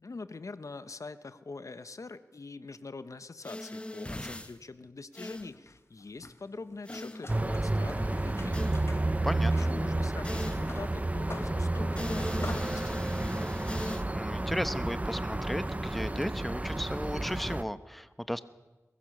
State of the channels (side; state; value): both; normal; correlation 0.95